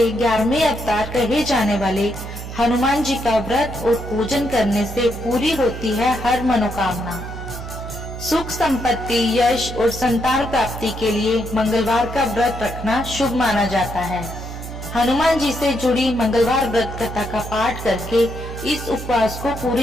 11वें अवतार कहे जाने वाले हनुमान जी का व्रत और पूजन करने से पूरी होती है हर मनोकामना। सुख संपत्ति, यश और संतान प्राप्ति के लिए मंगलवार का व्रत रखना शुभ माना जाता है। हनुमान जी से जुड़ी मंगलवार व्रत कथा का पाठ करके इस उपवास को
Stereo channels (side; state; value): right; noise; hum, 9 dB below the sound